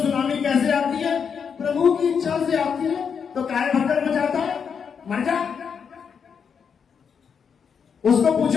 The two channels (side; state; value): right; quieter; 6.7 dB